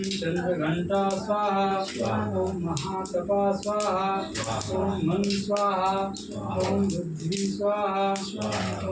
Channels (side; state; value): both; identical; correlation 1.00